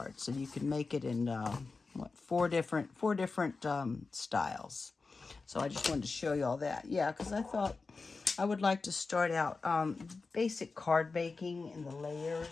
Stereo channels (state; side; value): quieter; right; 4.1 dB